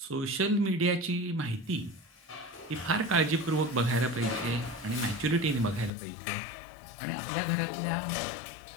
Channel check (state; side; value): drops out; right; at 5.9 s